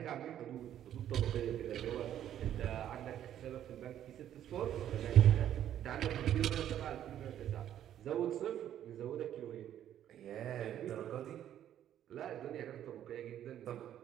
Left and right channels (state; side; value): quieter; left; 10.9 dB